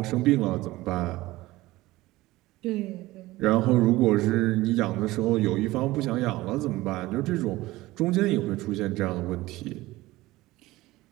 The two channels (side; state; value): left; quieter; 18.4 dB